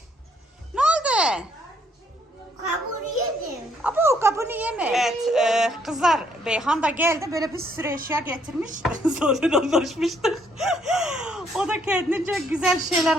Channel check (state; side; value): normal; both; correlation 0.69